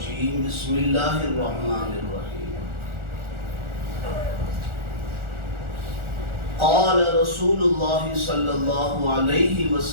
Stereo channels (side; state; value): left; late; 1.4 ms